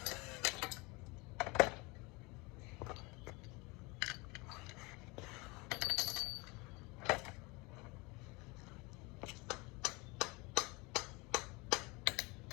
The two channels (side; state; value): right; quieter; 26.1 dB